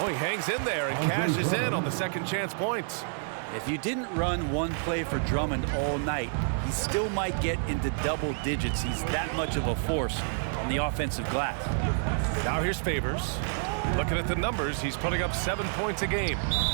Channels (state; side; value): silent; left; digital silence